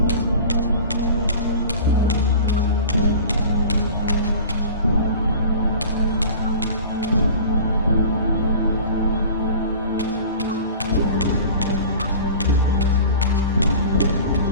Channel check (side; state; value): both; inverted; correlation -0.39